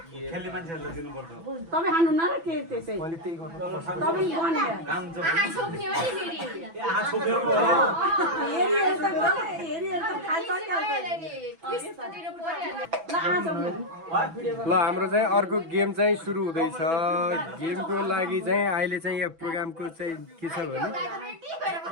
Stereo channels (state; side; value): late; left; 6.0 ms